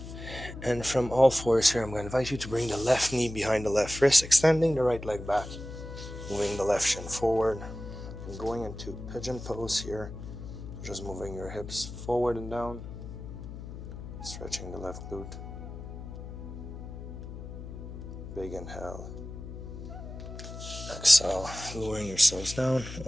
And from all fours here, I'm going to invite you to bring the left knee behind the left wrist, extending the right leg back, moving the left shin forward, and going into pigeon pose here. Just moving your hips forward and down, stretching the left glute. Big inhale. Exhale, lowering yourselves down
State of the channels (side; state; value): left; noise; hum, 10 dB below the sound